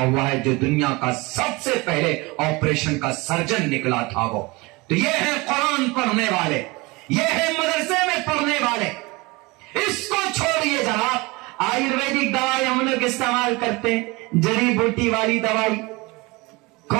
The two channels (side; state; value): left; quieter; 24.3 dB